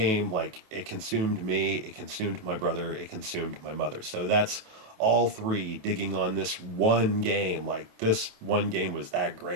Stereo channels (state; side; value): late; left; 28 ms